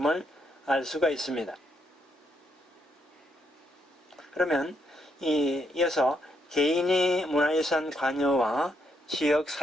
알 수가 있습니다. 그러면 이어서 개인의 문화유산 관여와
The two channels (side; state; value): both; normal; correlation 0.77